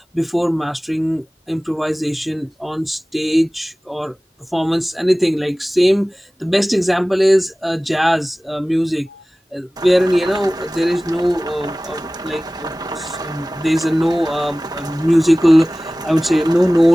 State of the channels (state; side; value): normal; both; correlation 0.98